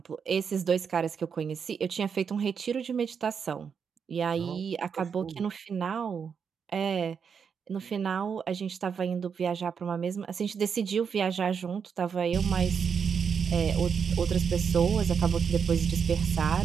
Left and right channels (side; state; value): left; quieter; 6.6 dB